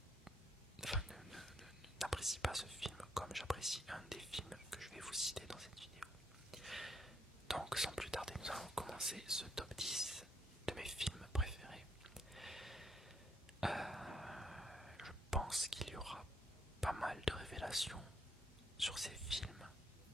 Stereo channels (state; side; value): normal; both; correlation 0.73